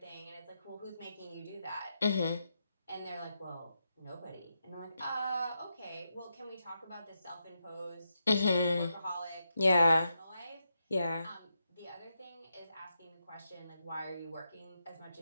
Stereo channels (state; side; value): inverted; both; correlation -0.84